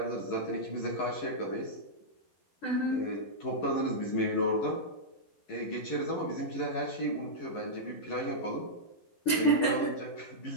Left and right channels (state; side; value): late; right; 11 ms